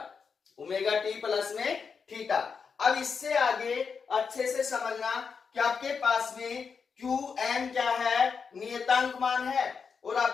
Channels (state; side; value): quieter; right; 5.8 dB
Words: ओमेगा टी प्लस में थीटा। अब इससे आगे अच्छे से समझना कि आपके पास में QM क्या है नियतांक मान है, और